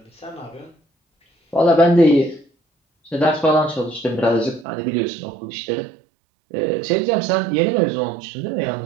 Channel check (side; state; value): left; drops out; at 4.7 s